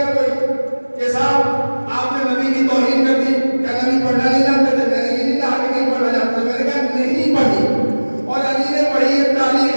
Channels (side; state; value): both; inverted; correlation -1.00